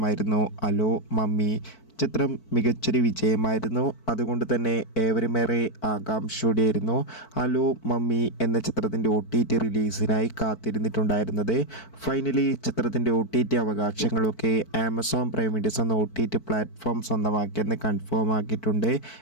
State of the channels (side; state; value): right; late; 4.5 ms